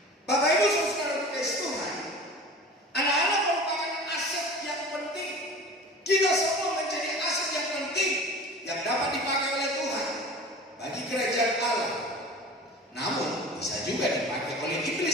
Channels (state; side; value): normal; both; correlation 0.38